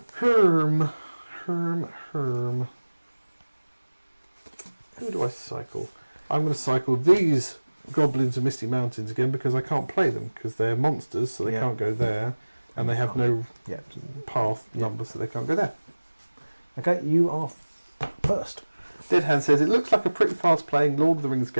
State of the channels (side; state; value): both; inverted; correlation -1.00